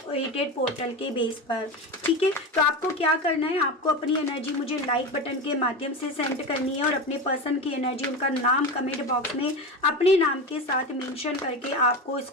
पोर्टल के बेस पर, ठीक है। तो आपको क्या करना है, आपको अपनी एनर्जी मुझे लाइक बटन के माध्यम से सेंड करनी है, और अपने पर्सन की एनर्जी, उनका नाम कमेंट बॉक्स में अपने नाम के साथ मेंशन करके आपको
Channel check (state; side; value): normal; both; correlation 0.23